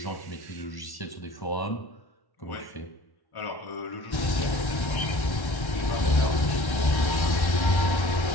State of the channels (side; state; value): right; late; 1.3 ms